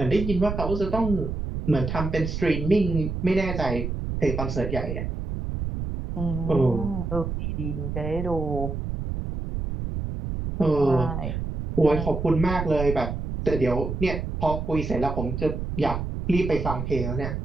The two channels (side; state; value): right; noise; rumble, 4 dB below the sound